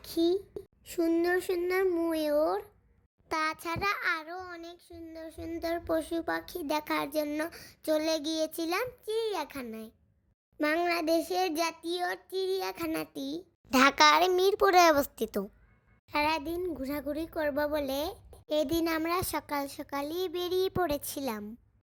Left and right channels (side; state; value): both; identical; correlation 1.00